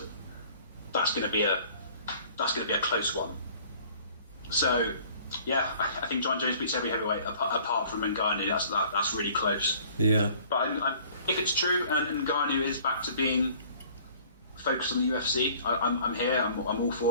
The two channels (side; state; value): both; inverted; correlation -0.53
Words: to be a close one. So yeah, I think John Jones beats every heavyweight apart from Ngannou. That's really close. Yeah. But if it's true and Ngannou is back to being focused on the UFC, I'm here. I'm all